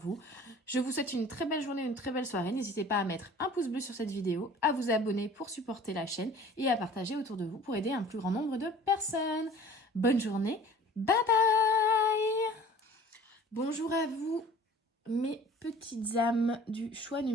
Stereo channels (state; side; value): normal; both; correlation 0.47